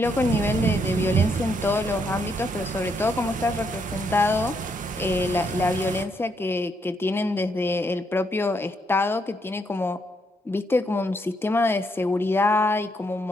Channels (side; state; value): both; normal; correlation 0.75